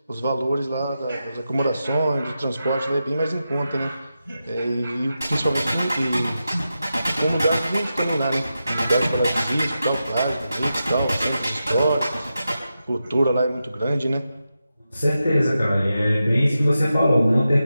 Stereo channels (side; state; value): both; inverted; correlation -0.90